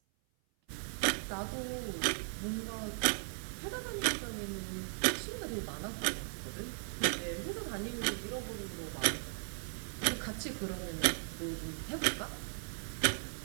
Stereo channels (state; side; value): silent; left; 53 dB below the other